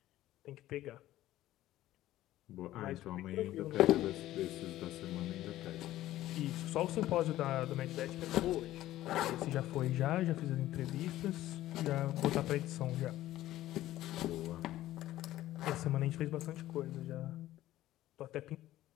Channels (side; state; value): right; quieter; 14.6 dB